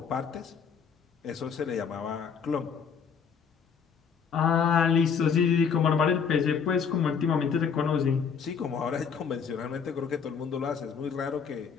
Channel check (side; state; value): right; quieter; 6.6 dB